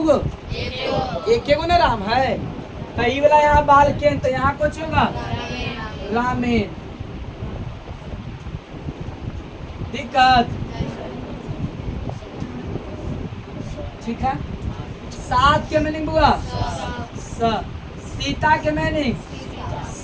एक ना राम है, तो ये वाला यहाँ बाल के, तो यहाँ कुछ होगा रामेन। दिक्कत ठीक है। सात के मीनिंग बुआ सीता के मीनिंग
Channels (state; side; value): identical; both; correlation 1.00